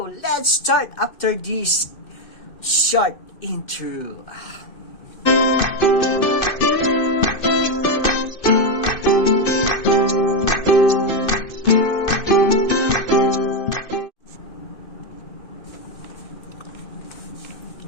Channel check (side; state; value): right; late; 2.6 ms